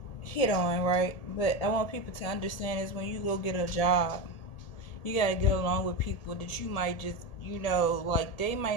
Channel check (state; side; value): late; right; 1.8 ms